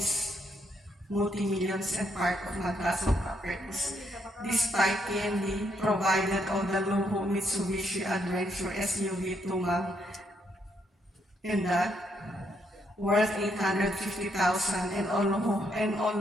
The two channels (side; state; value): both; normal; correlation 0.75